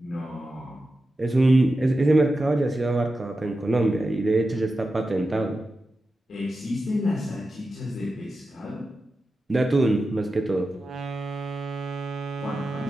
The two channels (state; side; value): normal; both; correlation 0.91